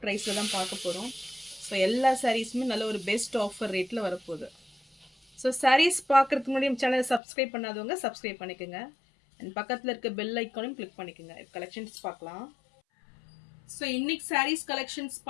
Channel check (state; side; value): drops out; right; at 7.2 s